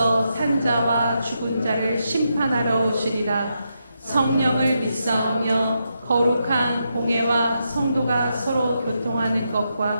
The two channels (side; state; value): both; inverted; correlation -0.83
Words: 산자와 죽은 자를 심판하러 오시리라. 성령을 믿사오며 거룩한 공회와 성도가 서로 교통하는